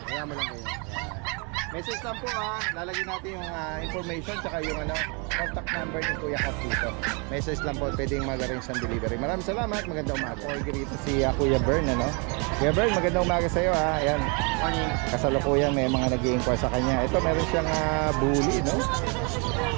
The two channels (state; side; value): quieter; left; 33.4 dB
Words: Kaya mo lang kayo. Message lang po lalagyan natin yung information tsaka yung contact number ni Kuya Kat dito. Message lang po, pwedeng mag-arrange ng delivery. Maraming salamat, magandang umaga. Order dito si Kuya Bern, Kuya Bern, magandang umaga sa iyo Ayan. Kasalukuyan may mga nag-i-inquire sa kanya. Ito meron siyang bully,